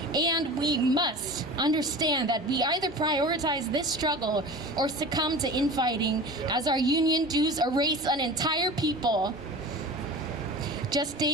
and we must understand that we either prioritize this struggle or succumb to infighting as our union dues erase an entire people. Just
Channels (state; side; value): normal; both; correlation 0.35